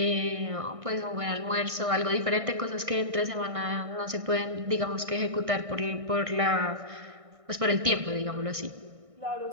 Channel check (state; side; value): late; left; 1.6 ms